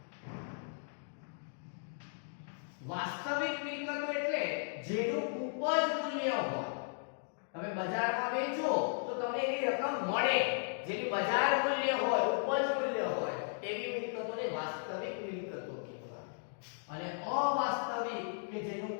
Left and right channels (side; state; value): right; silent; digital silence